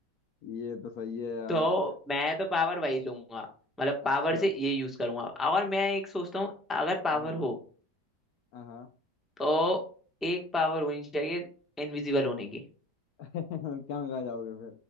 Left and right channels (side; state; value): both; normal; correlation 0.55